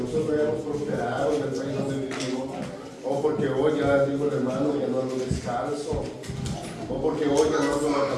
hemos prosperado en el país donde vivimos, o porque hoy ya digo el hermano, ya no ando descalzo, o porque hoy ya no ando la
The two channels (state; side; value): identical; both; correlation 1.00